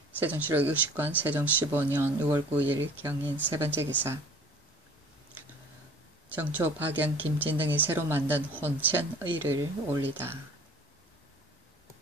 세종실록 60권 세종 15년 6월 9일 경인 세 번째 기사 정초, 박영, 김진 등이 새로 만든 혼천의를 올리다.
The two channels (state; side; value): normal; both; correlation 0.48